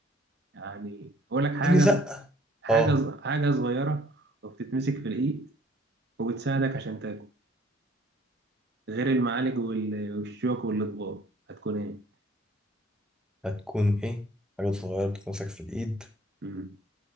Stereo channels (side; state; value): both; normal; correlation 0.58